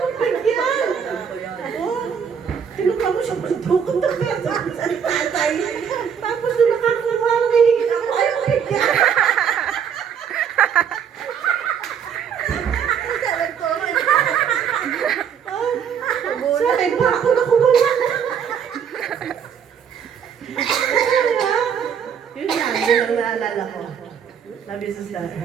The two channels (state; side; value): quieter; left; 7.7 dB